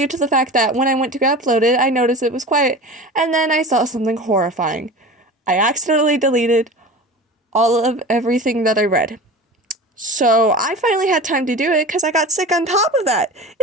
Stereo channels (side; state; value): both; normal; correlation 0.34